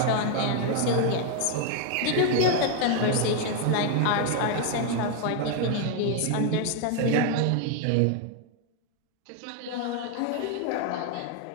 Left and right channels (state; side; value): different; both; correlation 0.01